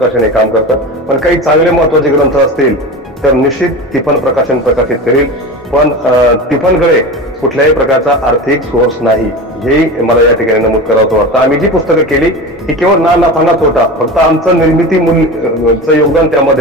हे काम करतं. पण काही चांगले महत्वाचे ग्रंथ असतील तर निश्चित तिफन प्रकाशन प्रकाशित करील, पण तिफनकडे कुठल्याही प्रकारचा आर्थिक सोर्स नाही, हेही मला या ठिकाणी नमूद करावं वाटतं. आम्ही जी पुस्तकं केली ही केवळ ना नफा ना तोटा, फक्त आमचं निर्मिती मूल्यचं योगदान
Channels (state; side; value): normal; both; correlation 0.28